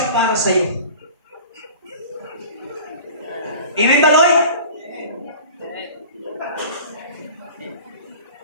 para sa iyo. Amen ba, Lord?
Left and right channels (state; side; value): inverted; both; correlation -0.42